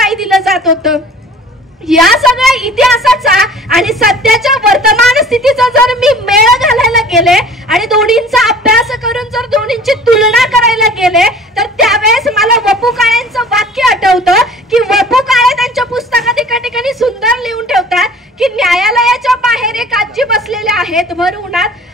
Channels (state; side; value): normal; both; correlation 0.47